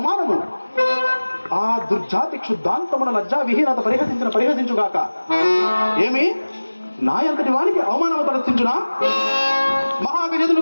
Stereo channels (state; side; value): inverted; both; correlation -1.00